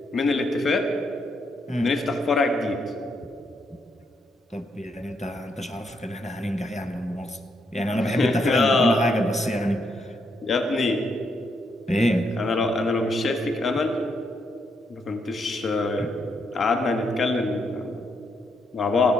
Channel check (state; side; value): normal; both; correlation 0.77